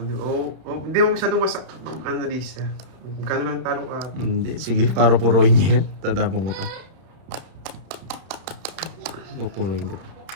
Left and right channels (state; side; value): late; left; 31 ms